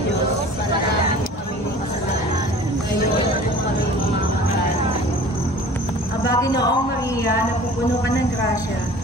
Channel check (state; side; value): normal; both; correlation 0.45